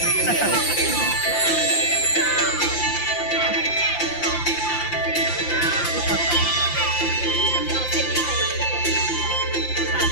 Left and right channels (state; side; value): late; right; 5.8 ms